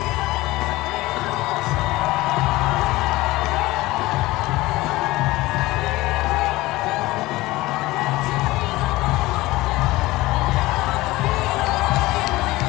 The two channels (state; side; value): quieter; right; 19.3 dB